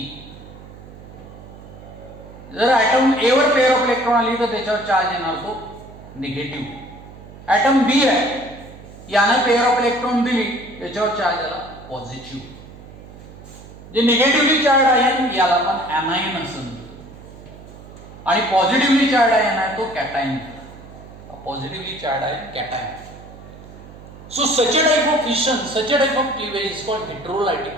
जर ॲटम ए वर पेअर ऑफ इलेक्ट्रॉन आली तर त्याच्यावर चार्ज येणार तो निगेटिव्ह. ॲटम बी आहे याने पेअर ऑफ इलेक्ट्रॉन दिली त्याच्यावर चार्ज आला पॉझिटिव्ह. जे निगेटिव्हली चार्ज आहे याला आपण ॲनायन असं म्हणतो. आणि पॉझिटिव्हली चार्ज आयन आहे तो cation. Positively charge ion cation. So such a type of fission, such a type of cleavage is called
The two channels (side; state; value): right; noise; hum, 18 dB below the sound